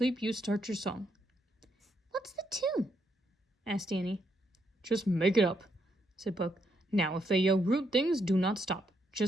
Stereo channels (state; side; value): normal; both; correlation 0.77